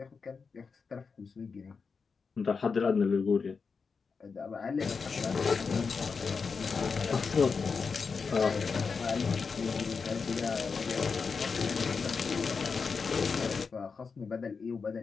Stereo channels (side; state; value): right; quieter; 5.2 dB